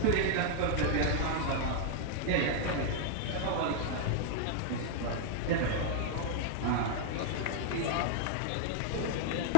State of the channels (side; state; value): both; different; correlation -0.01